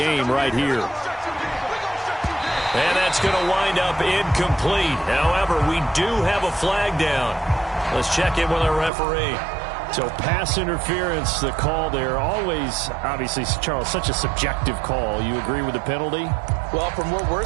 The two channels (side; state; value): left; drops out; at 8.9 s